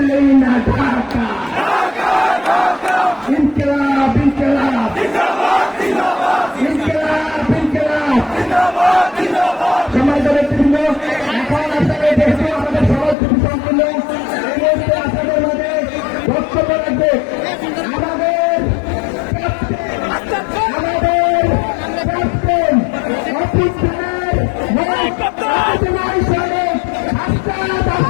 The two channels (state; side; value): drops out; right; at 13.2 s